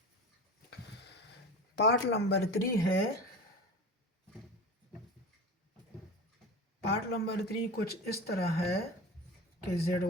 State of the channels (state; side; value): normal; both; correlation 0.31